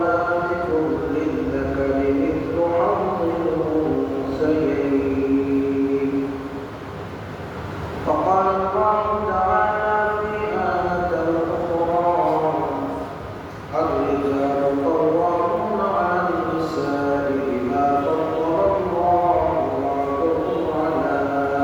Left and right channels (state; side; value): identical; both; correlation 1.00